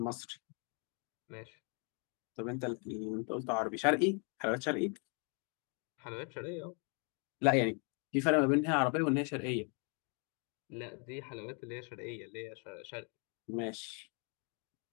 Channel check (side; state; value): right; quieter; 38.3 dB